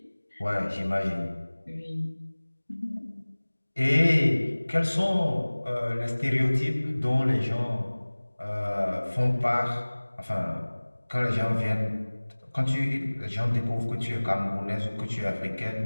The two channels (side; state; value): both; inverted; correlation -1.00